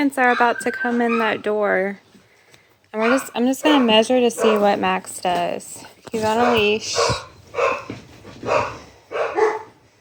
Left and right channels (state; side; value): identical; both; correlation 1.00